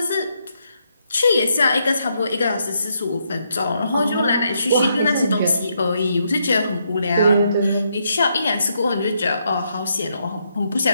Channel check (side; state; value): both; inverted; correlation -0.77